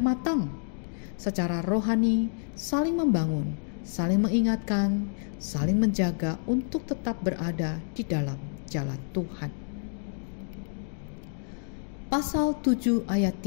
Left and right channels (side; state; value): right; silent; digital silence